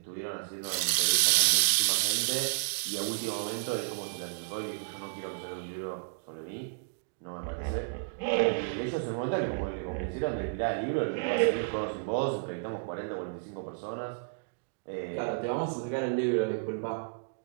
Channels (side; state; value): left; silent; digital silence